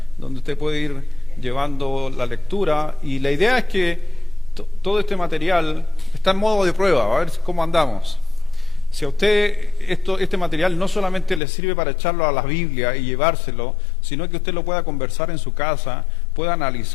donde usted puede ir llevando la lectura, y la idea es que todo este material está en modo de prueba, a ver cómo andamos. Si a usted este material no solamente le sirve para echarlo a la Biblia y llevárselo, sino que usted lo pueda conversar en su casa, pueda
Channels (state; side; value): drops out; right; at 11.4 s